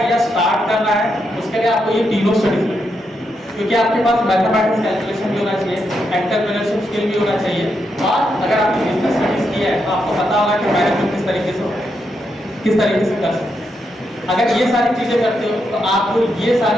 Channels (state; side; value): normal; both; correlation 0.82